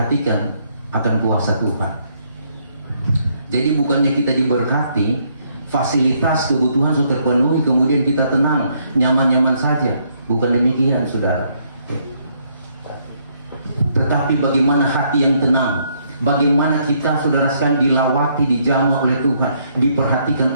akan kuasa Tuhan. Jadi bukannya kita diberkati, fasilitas kebutuhan sudah terpenuhi, kemudian kita tenang, nyaman-nyaman saja. Bukan demikian, saudara. Tetapi bagaimana hati yang tenang, bagaimana kita, saudara sekalian, dilawati, dijamah oleh Tuhan, diperhatikan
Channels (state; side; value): inverted; both; correlation -0.71